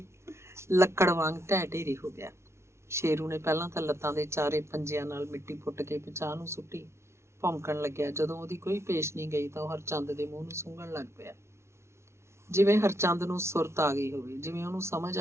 ਲੱਕੜ ਵਾਂਗ ਢਹਿ ਢੇਰੀ ਹੋ ਗਿਆ। ਸ਼ੇਰੂ ਨੇ ਪਹਿਲਾਂ ਤਾਂ ਲੱਤਾਂ ਦੇ ਚਾਰੇ ਪੰਜਿਆਂ ਨਾਲ ਮਿੱਟੀ ਪੁੱਟ ਕੇ ਪਿਛਾਂਹ ਨੂੰ ਸੁੱਟੀ। ਭੌਂਕਣ ਲੱਗਿਆ। ਜਦੋਂ ਉਹਦੀ ਕੋਈ ਪੇਸ਼ ਨਹੀਂ ਗਈ ਤਾਂ ਉਹ ਹਰਚੰਦ ਦੇ ਮੂੰਹ ਨੂੰ ਸੁੰਘਣ ਲੱਗ ਪਿਆ, ਜਿਵੇਂ ਹਰਚੰਦ ਨੂੰ ਸੁਰਤ ਆ ਗਈ ਹੋਵੇ, ਜਿਵੇਂ ਉਹਨੂੰ ਸਮਝ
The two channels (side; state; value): left; late; 0.13 ms